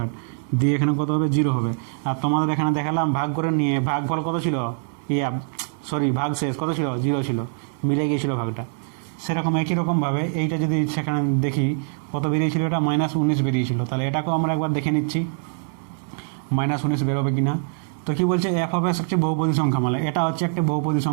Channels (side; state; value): left; silent; 63 dB below the other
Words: দিয়ে এখানে কত হবে? 0 হবে। আর তোমাদের এখানে দেখালাম ভাগ করে নিয়ে ভাগফল কত ছিল? ভাগশেষ কত ছিল? 0 ছিল, মিলে গিয়েছিল ভাগটা। সেরকম একই রকমভাবে এইটা যদি সেখানে দেখি কত বেরিয়েছিল? এটা -19 বেরিয়েছিল। তাহলে এটাকেও আমরা একবার দেখে নিচ্ছি -19 বেরোবে কি না। তো কী বলছে? এফ অফ এক্স হচ্ছে বহুপদী সংখ্যামালা। এটা হচ্ছে একটা বহুপদী